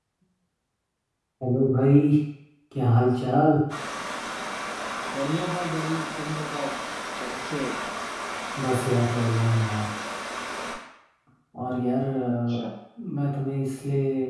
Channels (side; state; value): both; identical; correlation 1.00